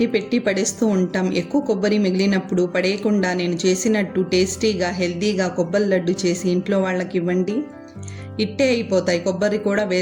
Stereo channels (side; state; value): both; identical; correlation 1.00